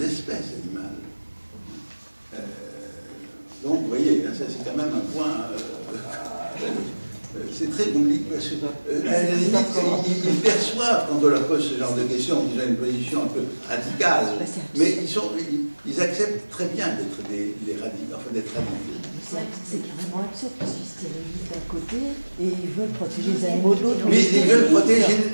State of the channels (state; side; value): inverted; both; correlation -1.00